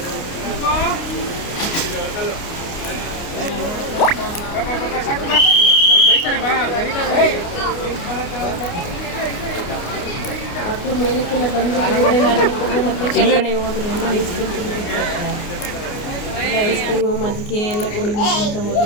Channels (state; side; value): late; right; 29 ms